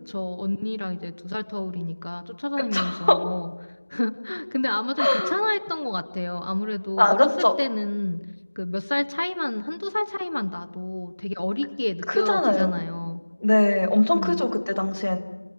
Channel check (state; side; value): inverted; both; correlation -1.00